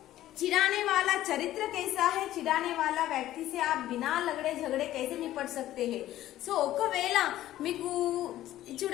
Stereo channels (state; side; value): quieter; right; 13.9 dB